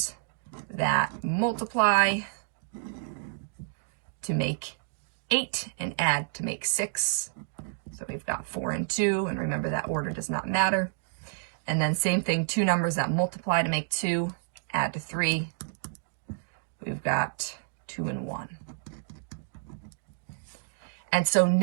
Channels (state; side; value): silent; left; digital silence